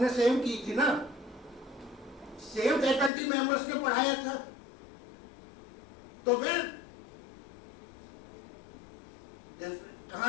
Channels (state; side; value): drops out; right; at 3.1 s